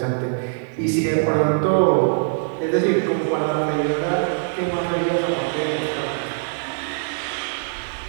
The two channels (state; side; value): silent; left; digital silence